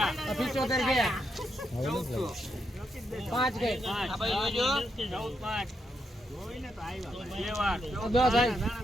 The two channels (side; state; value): both; normal; correlation 0.81